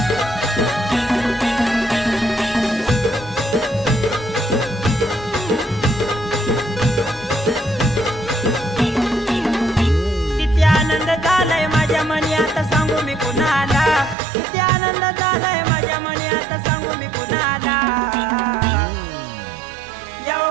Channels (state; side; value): drops out; left; at 14.2 s